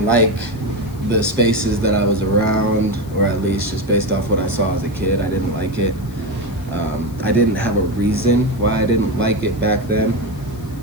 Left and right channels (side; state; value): left; noise; hiss, 24 dB below the sound